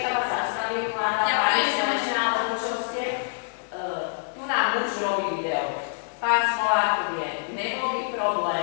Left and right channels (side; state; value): right; silent; 61 dB below the other